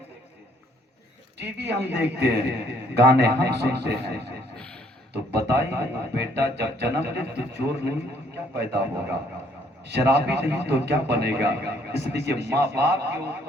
ہیں، ٹی وی ہم دیکھتے ہیں، گانے ہم سنتے ہیں، تو بتائیے بیٹا جب جنم لے تو چور نہیں تو کیا پیدا ہوگا، شرابی نہیں تو کیا بنے گا؟ اس لیے ماں باپ کے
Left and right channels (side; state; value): both; normal; correlation 0.65